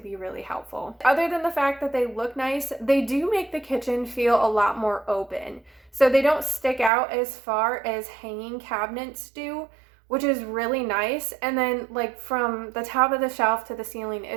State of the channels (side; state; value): left; drops out; at 6.9 s